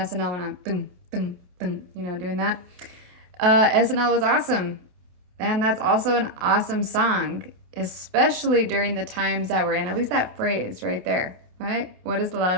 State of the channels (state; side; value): late; left; 28 ms